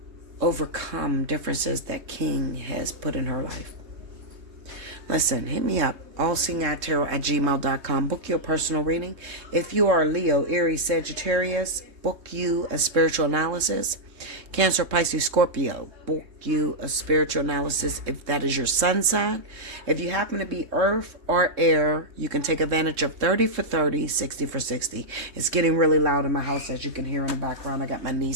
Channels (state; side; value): late; left; 3.7 ms